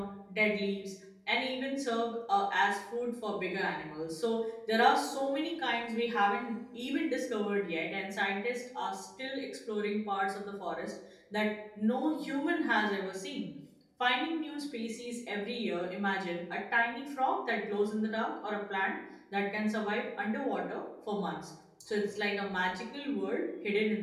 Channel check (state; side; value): identical; both; correlation 1.00